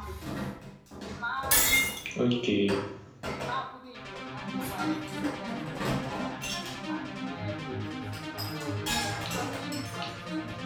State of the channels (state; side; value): identical; both; correlation 1.00